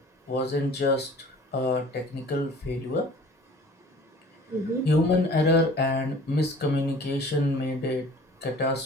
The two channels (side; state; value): both; normal; correlation 0.48